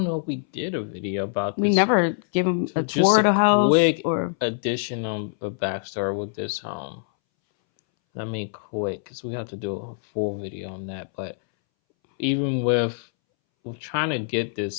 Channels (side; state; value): right; silent; 62 dB below the other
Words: know if we did a video about this. We never give them a tour of the house. Quick addition on a backstory with this home. Quick, because we have to do a full video on that. But even with trying to get